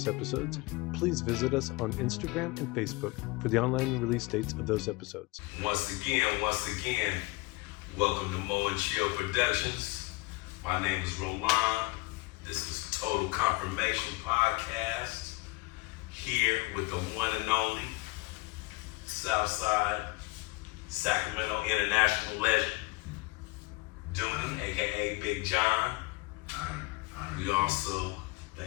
episodes, please visit us on Instagram and Facebook for the online release dates of those episodes. Once again, welcome to MoChill Productions. My name is Rolon. This is Total Confirmation Podcast. Here with the one and only Southside Sacramento International legend, Dunnie, aka Big John. We also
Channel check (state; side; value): quieter; right; 24.1 dB